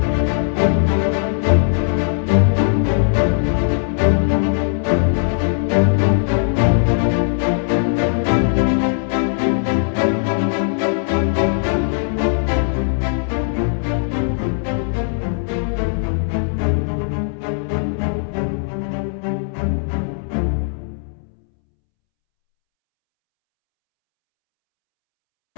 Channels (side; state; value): right; silent; 67 dB below the other